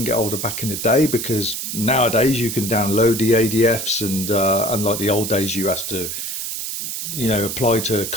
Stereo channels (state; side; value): noise; right; hiss, 5 dB below the sound